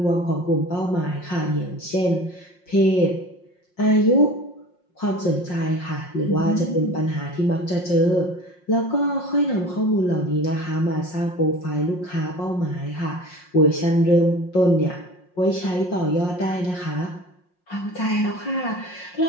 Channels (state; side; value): late; right; 5.6 ms